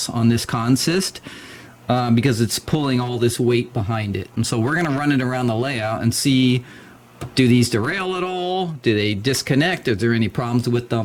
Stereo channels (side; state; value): both; identical; correlation 1.00